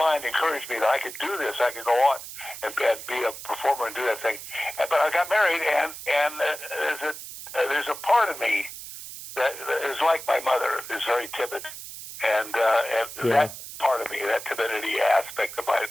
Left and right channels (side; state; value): right; noise; hiss, 11 dB below the sound